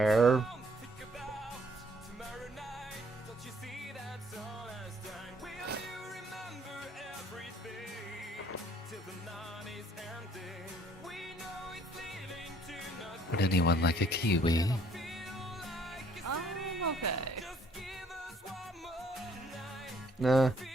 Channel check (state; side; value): normal; both; correlation 0.62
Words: Would anyone like a kiwi? Okay. Nah.